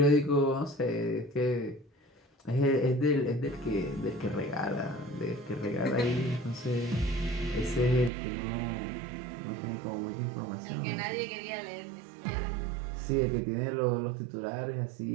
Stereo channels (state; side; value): drops out; left; at 8.1 s